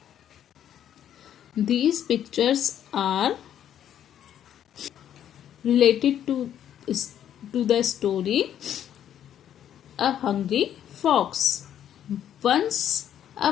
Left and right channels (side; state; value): right; quieter; 10.2 dB